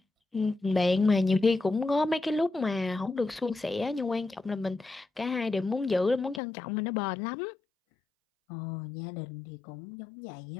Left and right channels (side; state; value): right; drops out; at 6.4 s